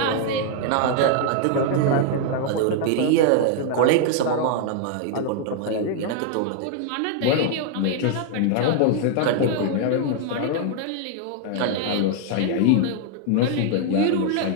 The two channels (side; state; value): both; different; correlation 0.00